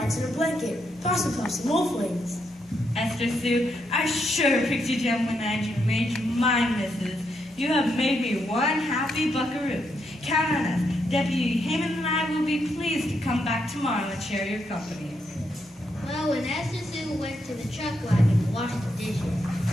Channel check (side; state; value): both; normal; correlation 0.79